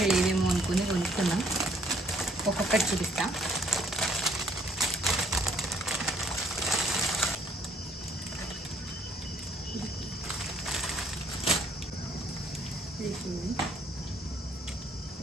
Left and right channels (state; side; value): normal; both; correlation 0.65